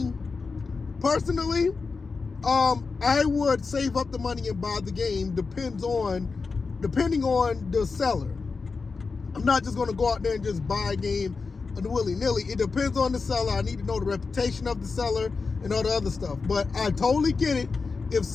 personally, I would save up the money and buy the game depending on the seller. I'm not just going to go out there and just buy a game willy-nilly. It depends on the seller. I need to know the reputation of the seller and all the other stuff. But I totally get it. If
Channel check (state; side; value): quieter; right; 4.5 dB